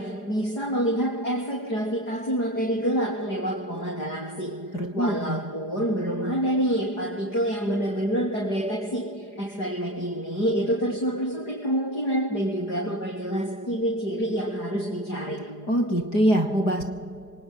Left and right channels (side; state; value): right; late; 4.9 ms